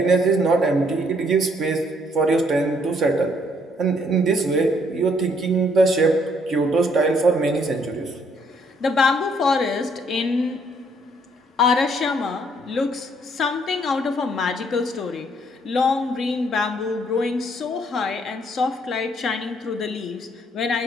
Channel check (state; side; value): normal; both; correlation 0.67